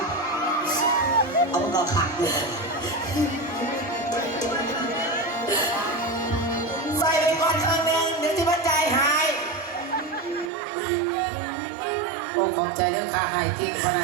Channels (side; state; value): left; drops out; at 10.5 s